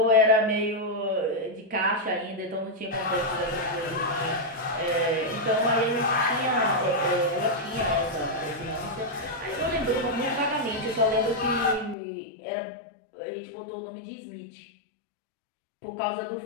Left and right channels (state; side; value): drops out; right; at 12.0 s